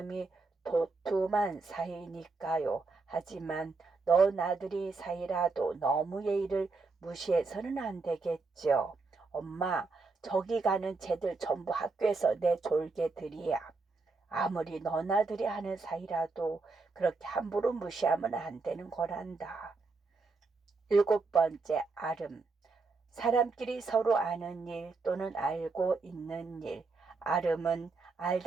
도톰한 사이니까요. 하지만 너 나들이 사이라도 너무 예의를 무시해서는 안 되겠죠. 엄마, 저기 가는 쟤들 전부 학교에서 내 졸개들이야. 아무리 너나들이 하는 사이라도 그렇게 함부로 무시하면 안 되는 거란다. 7번째, 아름. 사람끼리 서로 아는 일 또는 알고 있는 일. 아름은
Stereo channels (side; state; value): left; quieter; 4.0 dB